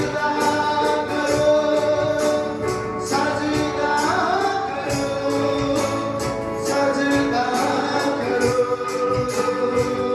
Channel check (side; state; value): both; identical; correlation 1.00